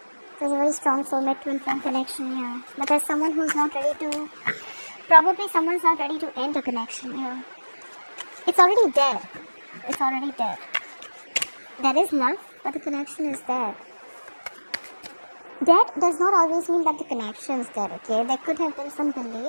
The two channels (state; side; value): inverted; both; correlation -1.00